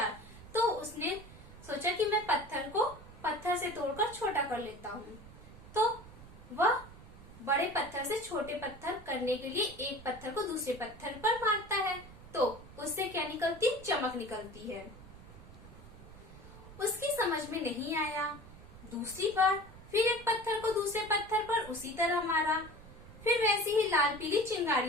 तो उसने सोचा कि मैं पत्थर को पत्थर से तोड़कर छोटा कर लेता हूँ। तो वह बड़े पत्थर से छोटे पत्थर करने के लिए एक पत्थर को दूसरे पत्थर पर मारता है, तो उससे क्या निकलती? चमक निकलती है। उसकी समझ में नहीं आया। दूसरी बार फिर एक पत्थर को दूसरे पत्थर पर उसी तरह मारा। फिर वैसी ही लाल पीली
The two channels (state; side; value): noise; right; rumble, 18 dB below the sound